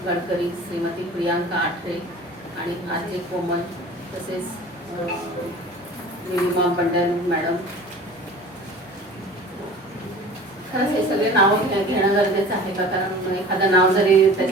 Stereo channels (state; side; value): normal; both; correlation 0.41